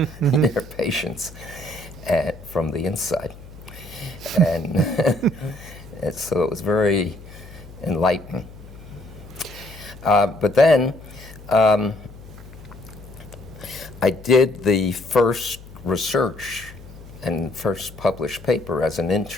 patients from the inside. And so it was very enlightening. But then I did the first research and first published paper as an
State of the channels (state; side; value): noise; left; hum, 18 dB below the sound